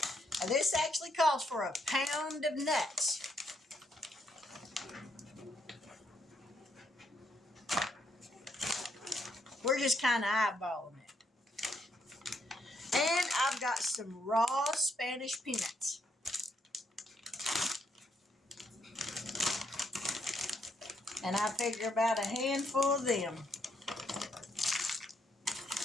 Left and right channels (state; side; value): normal; both; correlation 0.74